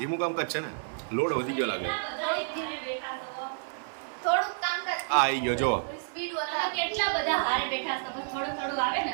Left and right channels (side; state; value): left; silent; 58 dB below the other